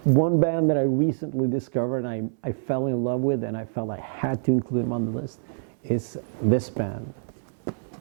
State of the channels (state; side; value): silent; left; 61 dB below the other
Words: One band that I recently discovered and I fell in love with, and I felt I had to include them on the list, is this band,